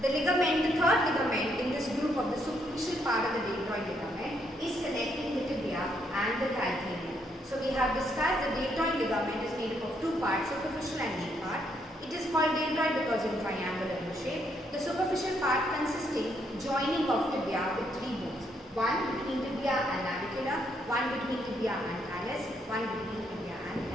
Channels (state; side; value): normal; both; correlation 0.74